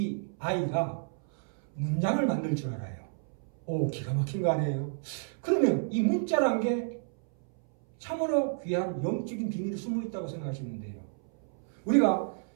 아이가 문장을 만들 줄 알아요. 오, 기가 막힌 거 아니에요? 그러면 이 문자란 게 참으로 귀한 영적인 비밀이 숨어 있다고 생각하시는데요. 우리가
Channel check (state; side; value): silent; left; 57 dB below the other